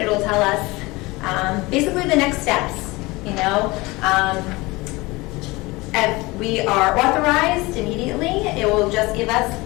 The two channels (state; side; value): quieter; right; 22.6 dB